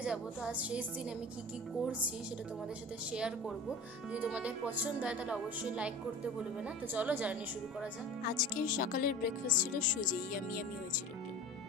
যাব, তো আজ শেষ দিন আমি কি কি করছি সেটা তোমাদের সাথে শেয়ার করব। যদি তোমাদের পছন্দ হয় তাহলে অবশ্যই লাইক করতে ভুলবে না। তো চলো জার্নি শুরু করা যাক। আজকে সকালের ব্রেকফাস্ট ছিল সুজি, ইয়ামি হয়েছিল।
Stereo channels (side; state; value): both; normal; correlation 0.35